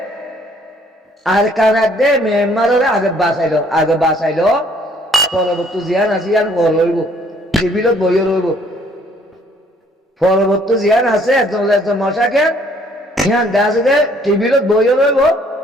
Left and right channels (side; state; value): both; normal; correlation 0.62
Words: আরখানার দে মেম্বারের আগে বাসাইলো পরবর্তী জিয়ান আছে ইয়ান বল হইব টেবিলত বইও রইব পরবর্তী জিয়ান আছে মশাকে ইয়ান দেওয়া আছে যে টেবিলত বইও রইব